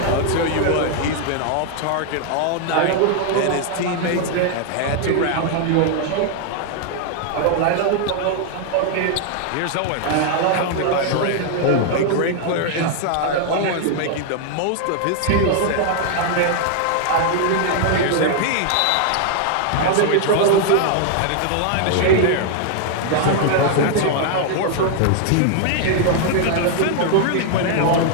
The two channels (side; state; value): both; different; correlation 0.00